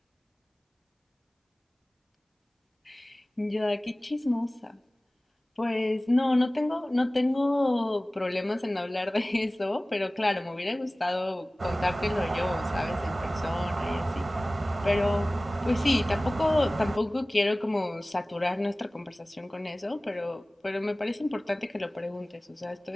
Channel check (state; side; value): normal; both; correlation 0.98